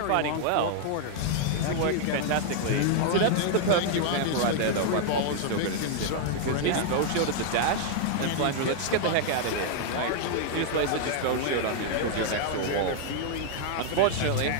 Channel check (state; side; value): different; both; correlation 0.00